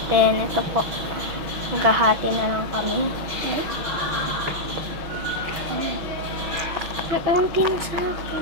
Then, ito po. Maghahati na lang kami. Naunti na sa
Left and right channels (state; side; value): late; left; 6.1 ms